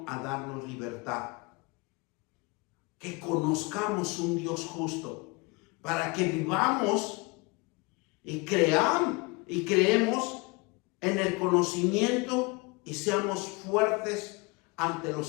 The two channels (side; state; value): right; quieter; 27.3 dB